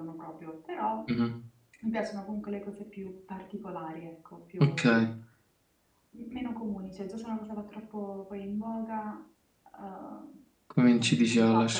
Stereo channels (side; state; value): both; identical; correlation 1.00